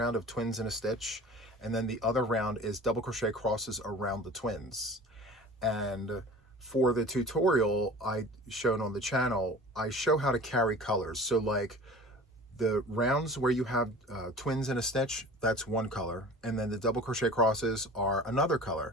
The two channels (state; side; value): normal; both; correlation 0.41